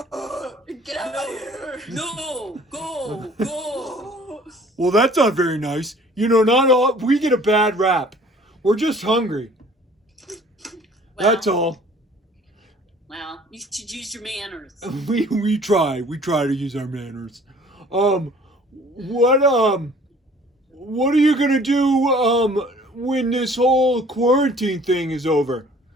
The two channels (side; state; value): both; normal; correlation 0.52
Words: out of here! No, go. Well, that's not very nice. Not all we get a bad rap. We're just hungry. That's all. Well, you should use your manners. We try to use our manners. What are you gonna do when this whole quarantine thing is over?